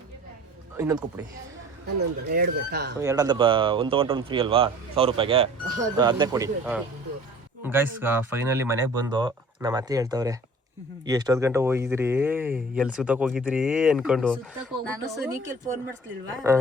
ಇನ್ನೊಂದು ಕೊಟ್ಬಿಡಿ. 2 ಅಂತ 1 ತೊಗೊಂಡ್ರೆ 1 ಫ್ರೀ ಅಲ್ವಾ 1,000 ರೂಪಾಯಿಗೆ? ಅದನ್ನೇ ಕೊಡಿ. ಗೈಸ್ ಫೈನಲಿ ಮನೆಗೆ ಬಂದು ನಮ್ಮ ಅತ್ತೆ ಹೇಳ್ತವ್ರೆ, ಎಷ್ಟೊತ್ತು ಗಂಟೆ ಹೋಗಿದ್ರಿ, ಎಲ್ಲಿ ಸುತ್ತಕ್ಕೆ ಹೋಗಿದ್ರಿ ಅನ್ಕೊಂಡು.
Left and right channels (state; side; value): normal; both; correlation 0.46